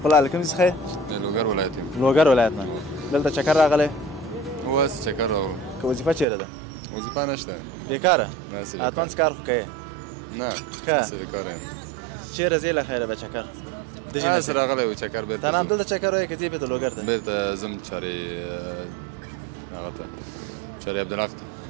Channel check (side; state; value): left; drops out; at 6.2 s